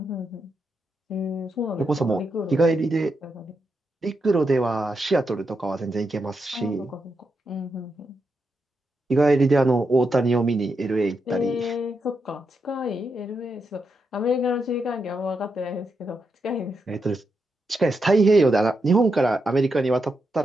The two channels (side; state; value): both; normal; correlation 0.84